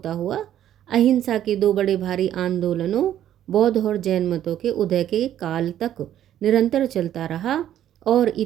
हुआ अहिंसा के दो बड़े भारी आंदोलनों बौद्ध और जैन मतों के उदय के काल तक निरंतर चलता रहा और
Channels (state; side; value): quieter; left; 11.3 dB